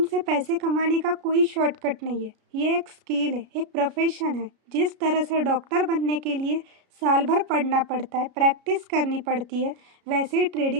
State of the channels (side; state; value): left; late; 33 ms